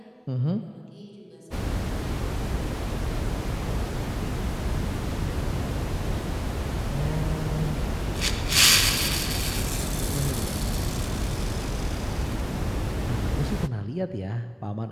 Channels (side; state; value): both; identical; correlation 1.00